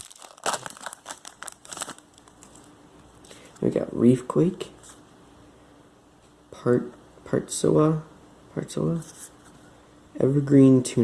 We got Reefquake, Partsoa, Evergreen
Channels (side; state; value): both; identical; correlation 1.00